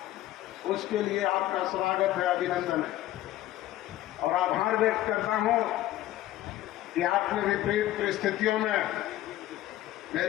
उसके लिए आपका स्वागत है, अभिनंदन है। और आभार व्यक्त करता हूं कि आपने विपरीत परिस्थितियों में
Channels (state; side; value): quieter; right; 14.5 dB